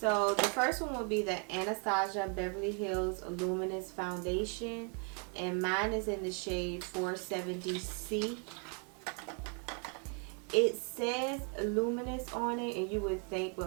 the first one will be the Anastasia Beverly Hills Luminous Foundation, and mine is in the shade 470C. It says Luminous on it, and you would think with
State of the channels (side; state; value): left; quieter; 39.2 dB